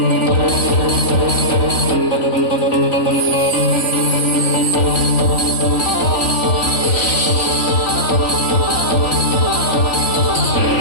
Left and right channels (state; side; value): late; right; 3.5 ms